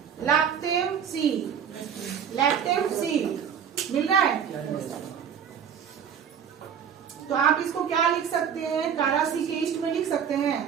लैक्टेम सी, लैक्टेम सी मिल रहा है। तो आप इसको क्या लिख सकते हैं? कारा सी के ईस्ट में लिख सकते हैं,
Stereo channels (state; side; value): quieter; left; 8.0 dB